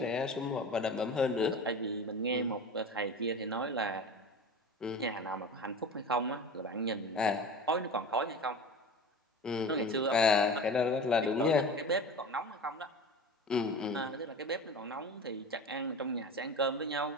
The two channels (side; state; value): both; normal; correlation 0.33